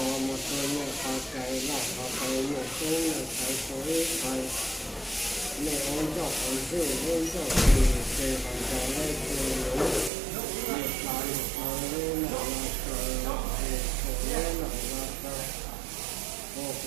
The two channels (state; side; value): drops out; left; at 10.1 s